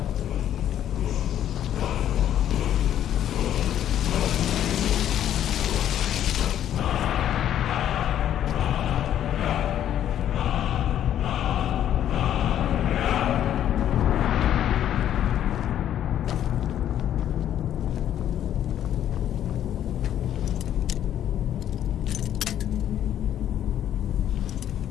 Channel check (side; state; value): right; quieter; 10.8 dB